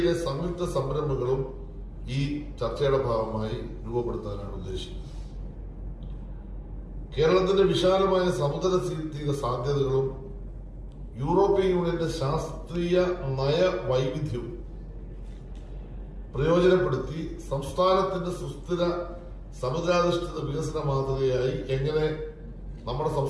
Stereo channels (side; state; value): both; identical; correlation 1.00